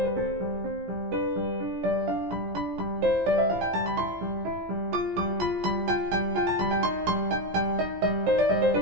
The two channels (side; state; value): left; late; 17 ms